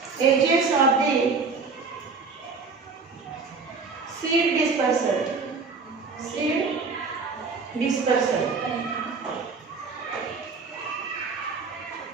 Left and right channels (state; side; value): quieter; left; 4.6 dB